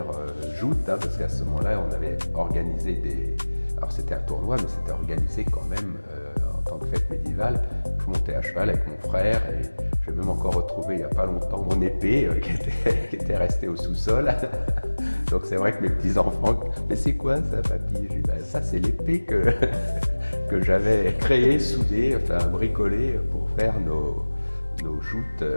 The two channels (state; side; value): inverted; both; correlation -1.00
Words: joutes, hein, parce qu'à ce moment-là, on avait organisé des... Alors c'était un tournoi, mais c'était organisé quand même en tant que fête médiévale. Je montais à cheval avec mon frère et j'ai même encore retrouvé il n'y a pas longtemps mon épée qui était restée au sous-sol. Donc c'est vrai que mes petits-enfants, mais c'est quoi ça, papy? J'ai dit, ben, ça c'est l'épée que j'avais créée, soudée, enfin bricolée pour faire nos joutes